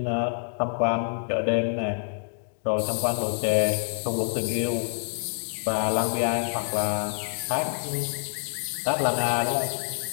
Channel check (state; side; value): silent; right; digital silence